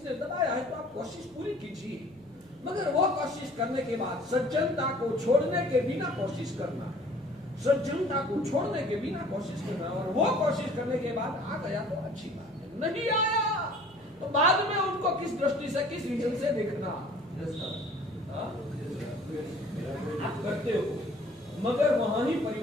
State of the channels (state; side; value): noise; right; hum, 28 dB below the sound